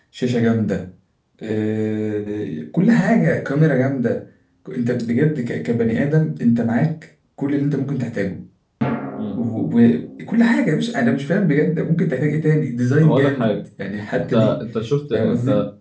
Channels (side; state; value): both; identical; correlation 1.00